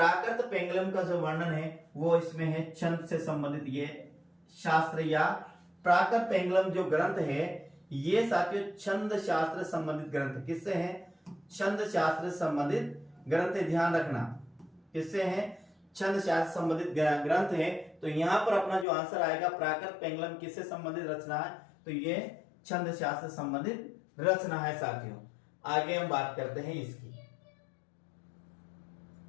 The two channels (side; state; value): right; drops out; at 18.9 s